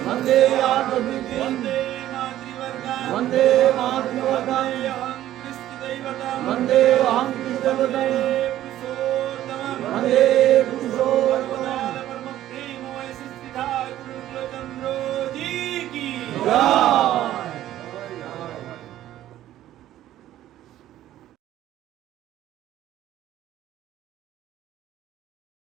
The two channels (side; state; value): left; quieter; 13.2 dB